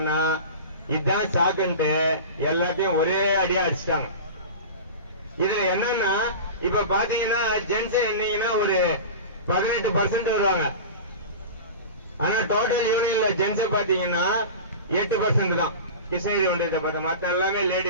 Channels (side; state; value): both; inverted; correlation -0.31